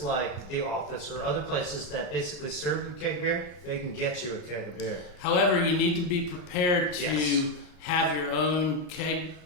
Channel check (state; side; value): late; right; 34 ms